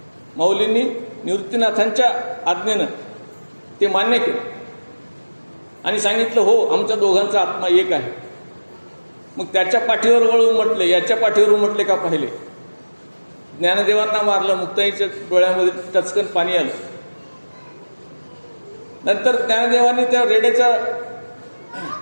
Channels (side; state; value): both; inverted; correlation -1.00